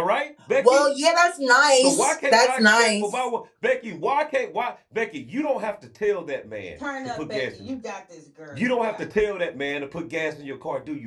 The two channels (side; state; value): both; identical; correlation 1.00